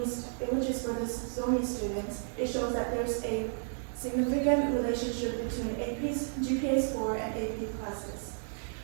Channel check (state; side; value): silent; left; digital silence